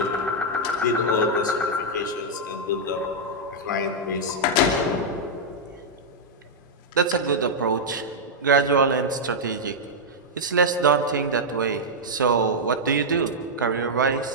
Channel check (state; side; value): normal; both; correlation -0.05